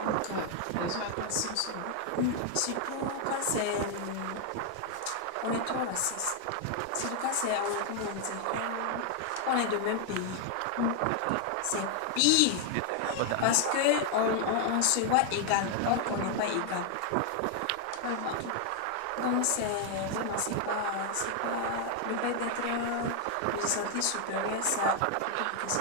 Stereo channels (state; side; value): different; both; correlation 0.00